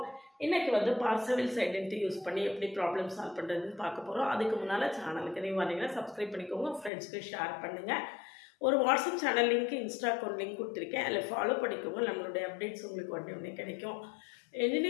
இன்னைக்கு வந்து Parseval's identity யூஸ் பண்ணி எப்படி ப்ராப்ளம் சால்வ் பண்றதுன்னு பார்க்க போறோம். அதுக்கு முன்னால சேனலுக்கு நீங்க வரீங்கன்னா சப்ஸ்கிரைப் பண்ணிக்கோங்க, ஃப்ரெண்ட்ஸ்க்கு ஷேர் பண்ணுங்க. ஒரு WhatsApp channel link Insta account link கொடுத்துருக்கேன், அதில் ஃபாலோ பண்ணிக்கோங்க. நம்மளுடைய அப்டேட்ஸ் உங்களுக்கு உடனே கிடைக்கும்.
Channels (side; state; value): right; drops out; at 6.9 s